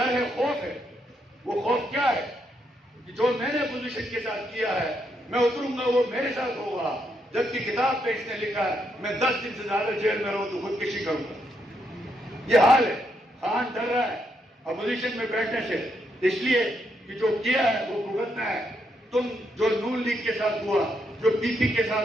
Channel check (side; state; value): both; normal; correlation 0.78